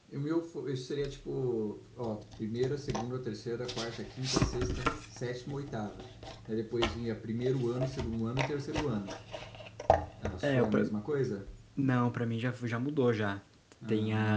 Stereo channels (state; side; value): identical; both; correlation 1.00